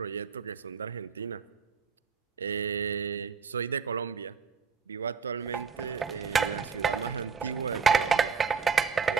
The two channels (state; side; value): quieter; left; 5.8 dB